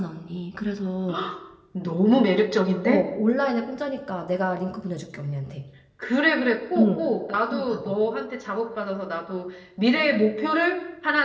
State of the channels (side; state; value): both; identical; correlation 1.00